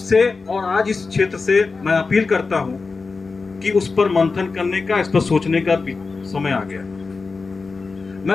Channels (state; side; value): quieter; right; 4.3 dB